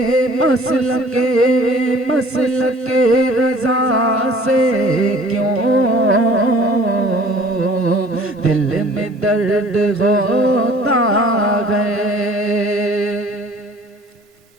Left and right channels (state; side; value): normal; both; correlation 0.51